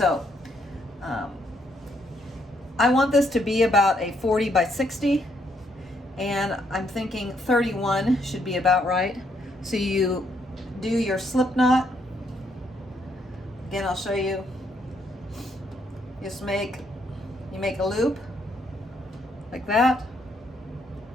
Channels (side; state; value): both; normal; correlation 0.73